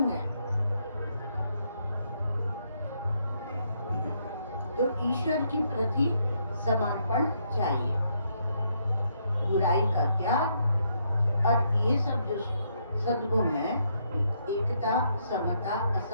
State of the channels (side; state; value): both; inverted; correlation -0.74